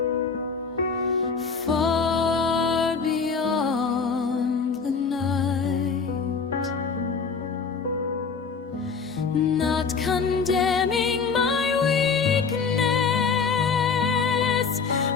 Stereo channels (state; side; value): quieter; right; 5.3 dB